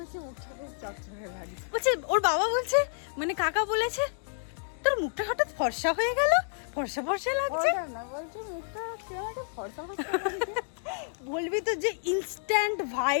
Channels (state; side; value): silent; right; digital silence